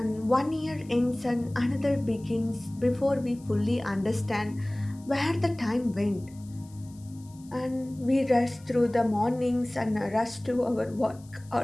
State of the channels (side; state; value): left; noise; hiss, 26 dB below the sound